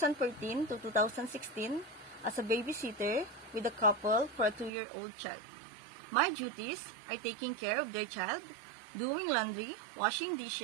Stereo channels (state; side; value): drops out; left; at 4.7 s